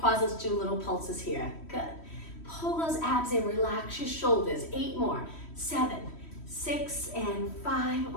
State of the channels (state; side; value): late; right; 3.1 ms